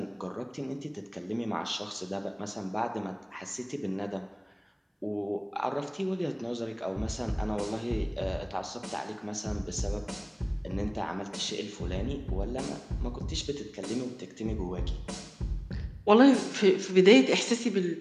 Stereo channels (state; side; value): identical; both; correlation 1.00